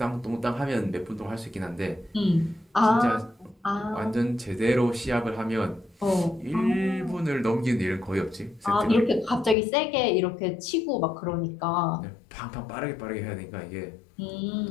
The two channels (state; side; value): drops out; right; at 9.6 s